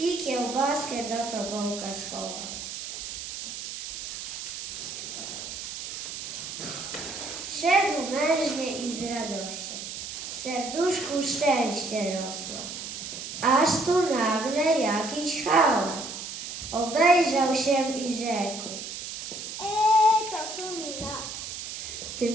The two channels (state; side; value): noise; right; hiss, 8 dB below the sound